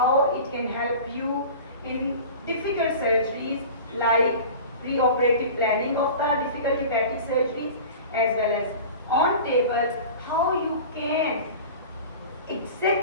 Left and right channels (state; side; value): inverted; both; correlation -0.37